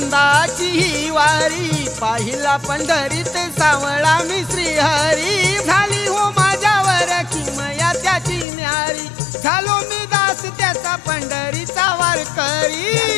ही वारी, पाहिला पंढरीत सावळा मी श्रीहरी, झाली हो माझ्यावर किमया त्याची न्यारी, झालो मी दास त्याचा पंढरीचा वारकरी.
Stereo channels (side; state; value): right; drops out; at 8.5 s